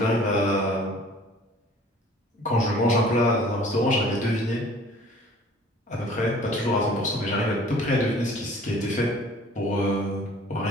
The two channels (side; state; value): both; normal; correlation 0.50